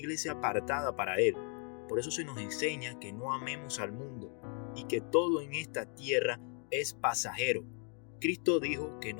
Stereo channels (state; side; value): quieter; right; 39.9 dB